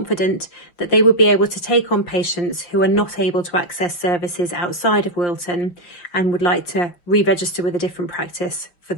that they will be able to take on patients who are not able to access services outside of Wilton and would like to re-register with a different practice for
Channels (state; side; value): late; right; 5.7 ms